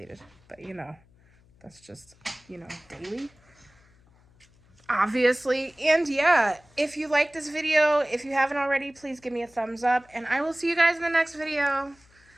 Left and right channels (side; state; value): left; noise; hum, 30 dB below the sound